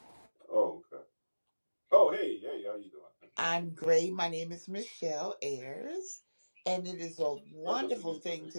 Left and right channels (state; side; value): inverted; both; correlation -1.00